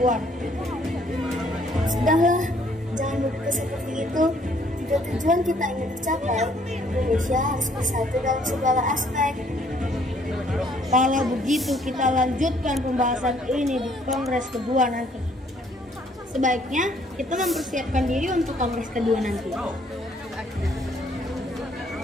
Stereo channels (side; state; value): both; normal; correlation 0.64